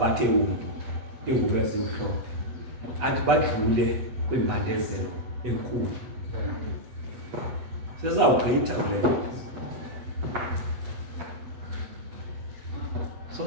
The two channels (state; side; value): late; left; 8.2 ms